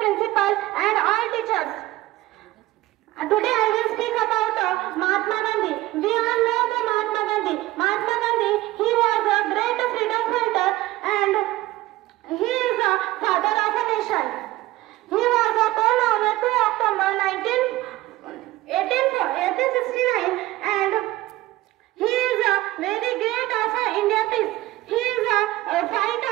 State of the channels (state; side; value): quieter; left; 17.3 dB